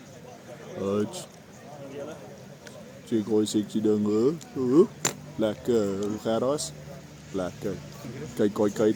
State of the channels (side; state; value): both; identical; correlation 1.00